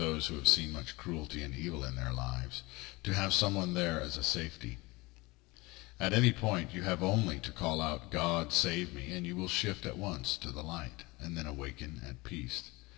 who have seen much cruelty and evil in their lives, to have someone there as a safety. At any point you have only to call out, "God, save me," and you will shift at once to the light, and then awaken at peace,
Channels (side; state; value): right; quieter; 23.1 dB